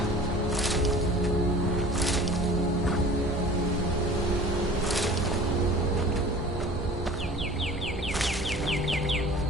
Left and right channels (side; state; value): both; normal; correlation 0.44